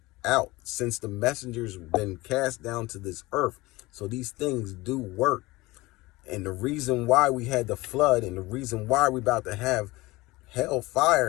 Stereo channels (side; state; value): right; quieter; 20.8 dB